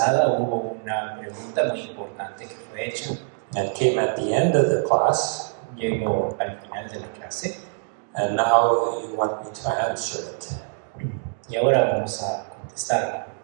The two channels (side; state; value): left; silent; digital silence